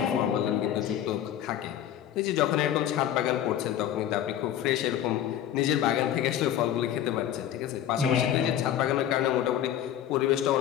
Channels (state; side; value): quieter; right; 10.9 dB